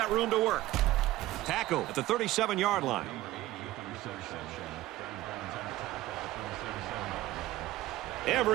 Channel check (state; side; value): quieter; left; 16.4 dB